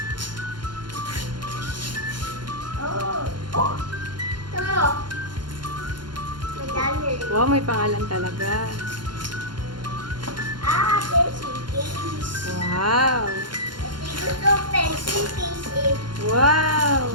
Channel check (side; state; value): left; late; 0.71 ms